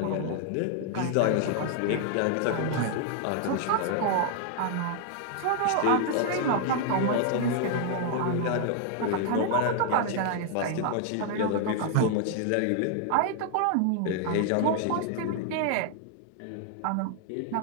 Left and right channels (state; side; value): different; both; correlation 0.00